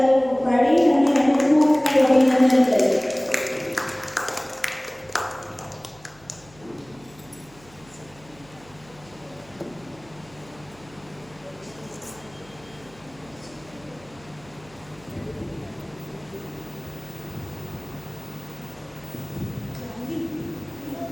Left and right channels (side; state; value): right; noise; hum, 25 dB below the sound